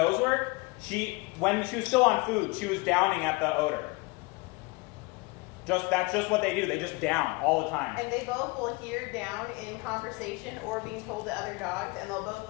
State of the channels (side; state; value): right; quieter; 25.4 dB